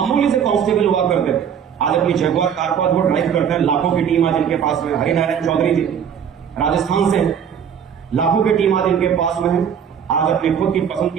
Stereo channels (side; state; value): left; quieter; 8.0 dB